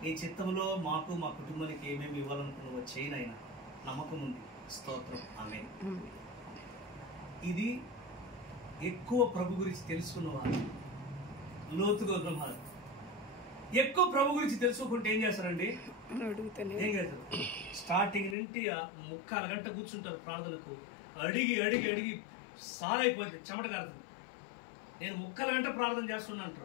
నీ చిత్తంలో మాకు మా కుటుంబానికి ఏమేమి ఇవ్వాలనుకున్నావో చేయనైనా నమ్మకం ఉంది, స్తోత్రం, ఆమేన్. ఇది ఎక్కువ ప్రభు గురించి తెలుసుకున్నవారు లోతుగా ఉన్నవారు. ఎక్కువ ప్రభు గురించి తెలుసుకుంటే ఏం చేస్తారండి? ఏం చేస్తారు? స్టార్టింగ్ నుండి 3/4 గంట కూర్చుంటారు ప్రార్థనకు. అడిగి అడిగి అడిగి సారైపోయింది, చెమట కారుతుంది. నేను 3/4 గంట ప్రార్థన చేస్తున్నా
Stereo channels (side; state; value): right; drops out; at 18.4 s